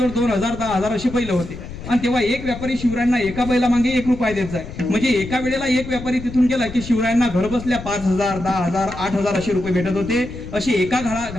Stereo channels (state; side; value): noise; left; rumble, 11 dB below the sound